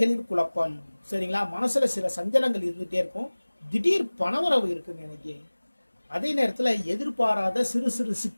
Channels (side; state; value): both; inverted; correlation -1.00